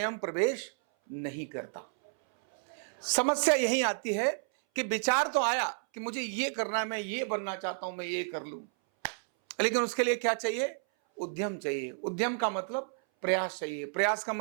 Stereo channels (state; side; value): silent; left; 57 dB below the other